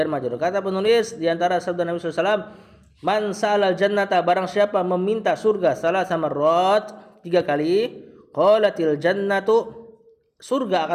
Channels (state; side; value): identical; both; correlation 1.00